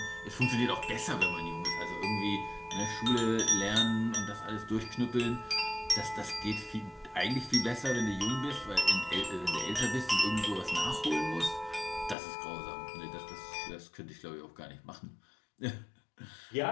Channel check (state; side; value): drops out; right; at 12.2 s